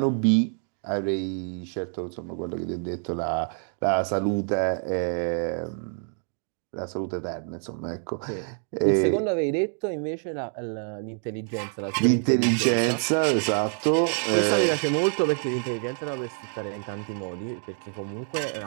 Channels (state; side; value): silent; left; 57 dB below the other